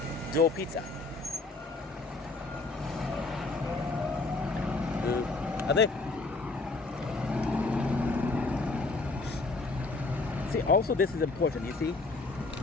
dough pizza. Are they? See, also this is important, you see?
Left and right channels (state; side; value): quieter; right; 3.4 dB